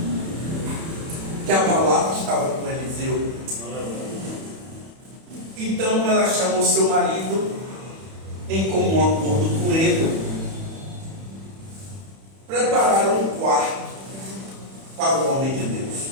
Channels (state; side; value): late; left; 31 ms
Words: que a palavra estava com Eliseu. Então ela chamou seu marido, em comum acordo com ele, prepararam um quarto para o homem de Deus.